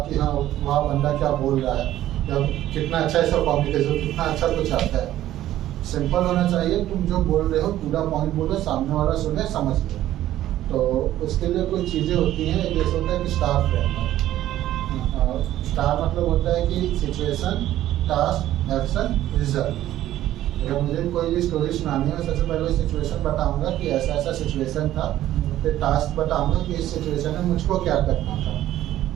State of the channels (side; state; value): left; quieter; 13.4 dB